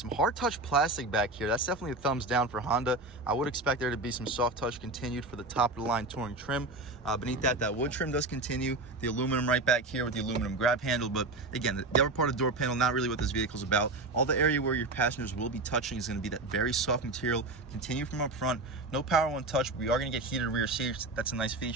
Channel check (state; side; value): quieter; left; 3.0 dB